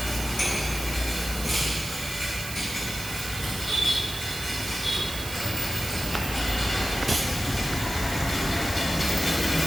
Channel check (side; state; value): right; noise; hiss, 9 dB below the sound